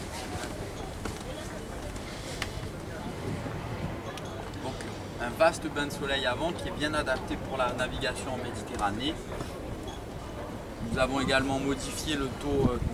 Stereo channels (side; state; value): both; identical; correlation 1.00